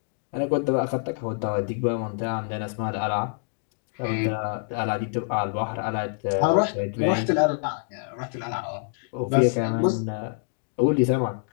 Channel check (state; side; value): silent; right; 59 dB below the other